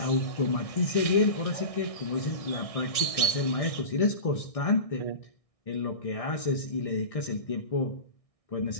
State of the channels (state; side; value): late; right; 1.6 ms